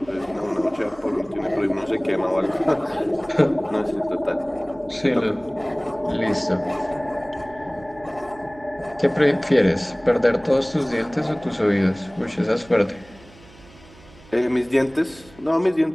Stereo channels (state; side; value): noise; right; hum, 24 dB below the sound